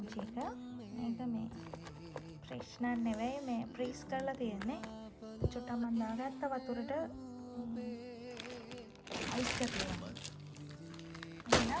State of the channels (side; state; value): both; identical; correlation 1.00